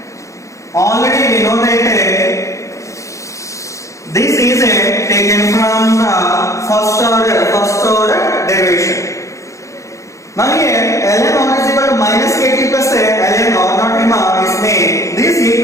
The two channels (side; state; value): right; late; 0.15 ms